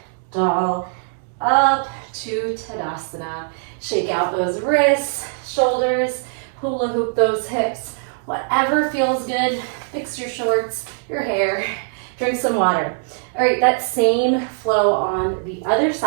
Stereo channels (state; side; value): silent; left; digital silence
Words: up to Tadasana. Shake out those wrists, shoulders, hula hoop those hips. Whatever feels good. Fix your shorts, your hair, drink some water. All right, that same flow on the other